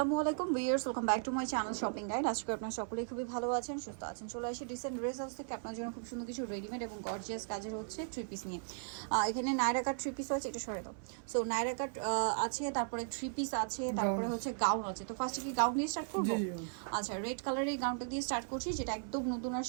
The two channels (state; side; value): silent; left; 53 dB below the other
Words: আলাইকুম viewers, welcome back to my channel shopping guide. আজকে আপনারা সকলেই খুবই ভালো আছেন, সুস্থ আছেন। চলে আসি ডিসেন্ট ড্রেস হাউস থেকে আপনার জন্য খুব সুন্দর কিছু রেডিমেড এবং গর্জিয়াস কাজের হচ্ছে থ্রি পিস নিয়ে। এখানে নায়রা কাট থ্রি পিস আছে, এটা সরে দাও। সো নায়রা কাট আছে, তারপরে থ্রি পিস আছে, তারপরে হচ্ছে গাউন আছে। তো ফার্স্টে কি গাউন দিয়ে স্টার্ট করবো? আচ্ছা, রেড কালারের এই গাউনটা দিয়ে স্টার্ট করছি, যেটা একদম নতুন